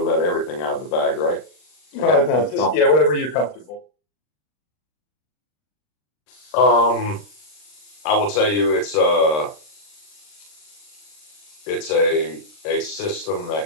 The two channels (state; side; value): late; right; 39 ms